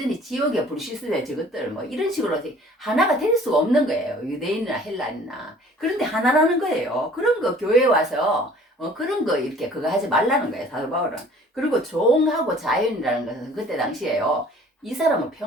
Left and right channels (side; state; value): both; normal; correlation 0.51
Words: 지옥에 불시스대 저것들 뭐 이런 식으로 하나가 될 수가 없는 거예요. 유대인이나 헬라인이나. 그런데 하나라는 거예요. 그런 거 교회에 와서 그런 거 이렇게 그거 하지 말라는 거예요. 사도 바울은. 그리고 종하고 자연이라는 것은 그때 당시에요. 이 사람은